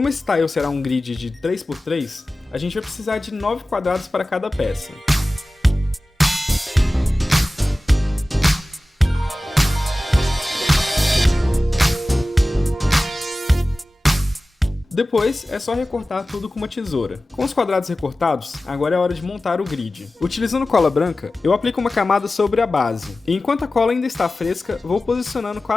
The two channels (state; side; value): normal; both; correlation 0.96